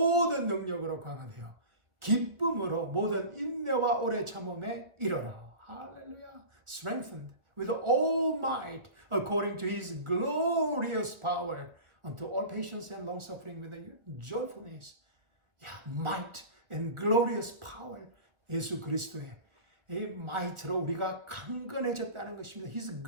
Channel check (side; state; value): left; late; 1.3 ms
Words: 능력으로 강화되어 기쁨으로 모든 인내와 오래 참음에 이르라. 할렐루야. Strengthened with all might according to his glorious power unto all patience and long suffering with joyfulness. might and glorious power. 예수 그리스도의 이 might로 우리가 강건해졌다는 것입니다. His